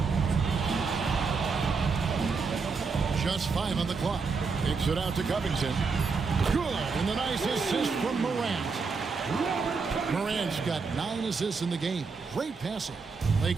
Just 5 on the clock. Kicks it out to Covington. Good, and the nice assist from Morant. Morant's got 9 assists in the game. Great passing.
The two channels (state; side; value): quieter; left; 4.8 dB